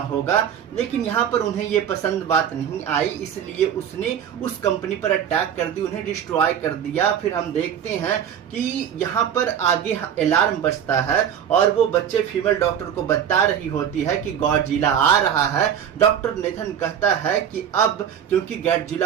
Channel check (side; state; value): left; quieter; 8.9 dB